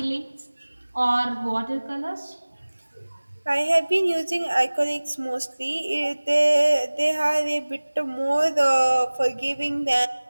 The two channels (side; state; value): both; inverted; correlation -1.00